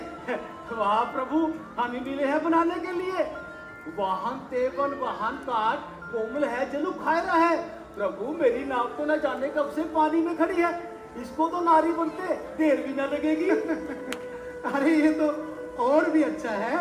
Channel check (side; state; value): both; identical; correlation 1.00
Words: वाह प्रभु, हम ही मिले हैं बनाने के लिए। वाहन तेवन वाहन काट, कोमल है जलु खायरा है। प्रभु, मेरी नाव तो न जाने कब से पानी में खड़ी है, इसको तो नारी बनते देर भी न लगेगी। अरे ये तो और भी अच्छा